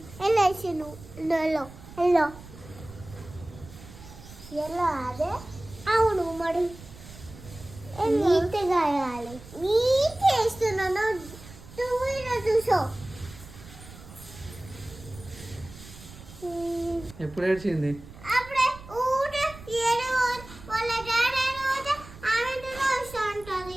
ఎల్లో వేసాను. ఎల్లో ఎల్లో ఎల్లో అదే అవును. మరి నీట్గా వేయాలి. నీట్ వేస్తున్నాను. నువ్వు చూసో ఎప్పుడు ఏడ్చింది? అప్పుడే ఊట ఏడు వాళ్ళ డాడీ ఊట ఆమెతో వస్తూ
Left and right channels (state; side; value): noise; right; rumble, 17 dB below the sound